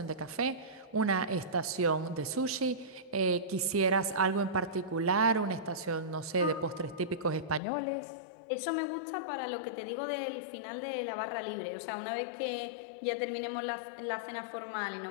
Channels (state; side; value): drops out; right; at 7.6 s